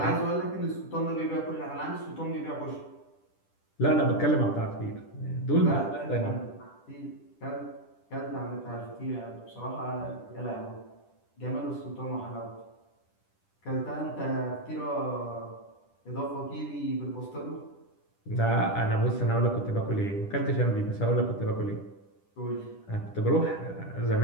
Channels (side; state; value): right; late; 10 ms